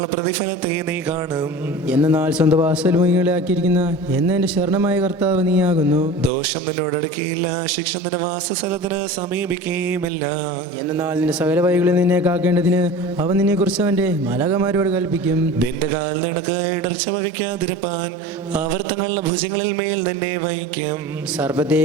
പ്രതിഫലത്തെ നീ കാണും. എന്നാൽ സ്വന്തം വാസൽമുഖികളെ ആക്കിയിരിക്കുന്ന എന്നെ ശരണമായ കർത്താവ് നീയാകുന്നു. ദോഷം നിന്നോടടുക്കിയില്ല. ശിക്ഷ നിന്റെ വാസസ്ഥലത്തിന് സമീപിക്കുകയുമില്ല. എന്നാൽ നിന്റെ സകല വഴികളിൽ നിന്നെ കാക്കേണ്ടതിന് അവൻ നിന്നെ കുറിച്ച് അവന്റെ മാലാഖമാരോട് കൽപ്പിക്കും. നിന്റെ കാൽ നിനക്ക് ഇടർച്ച വഹിക്കാതിരുപ്പാൻ അവർ തങ്ങളുടെ ഭുജങ്ങളിൽ മേൽ നിന്നെ വഹിക്കും.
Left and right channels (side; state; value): both; normal; correlation 0.36